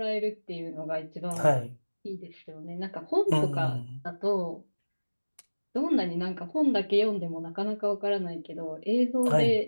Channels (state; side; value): inverted; both; correlation -1.00